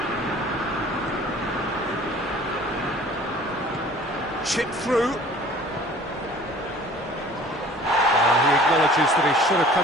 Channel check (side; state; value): both; normal; correlation 0.49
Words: Chip through. He acknowledges that he should have